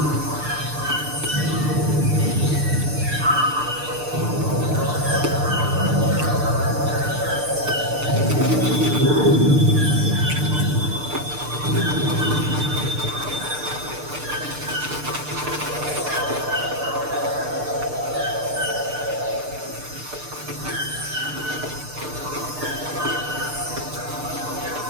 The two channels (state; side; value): late; left; 6.7 ms